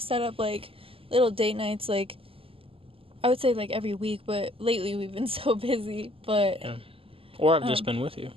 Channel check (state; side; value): late; left; 0.26 ms